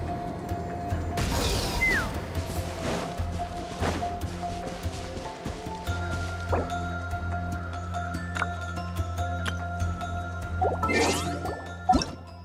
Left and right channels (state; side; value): identical; both; correlation 1.00